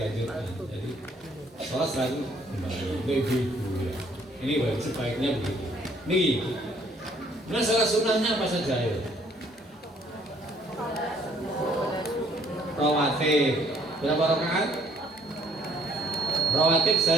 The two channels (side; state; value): both; normal; correlation 0.62